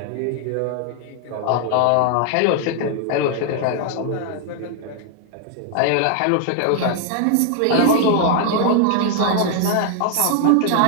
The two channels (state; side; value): different; both; correlation 0.00